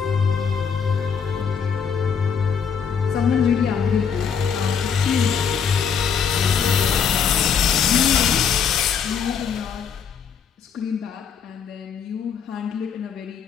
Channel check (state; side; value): quieter; right; 7.0 dB